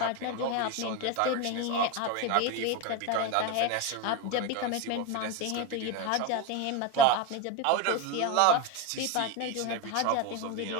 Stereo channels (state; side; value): different; both; correlation 0.04